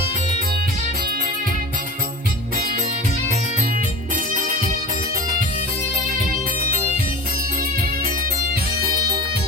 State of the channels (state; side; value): normal; both; correlation 0.34